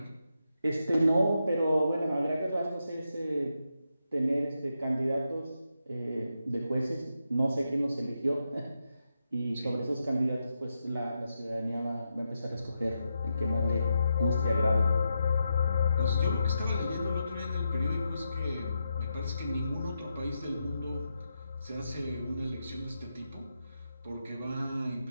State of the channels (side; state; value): both; inverted; correlation -0.85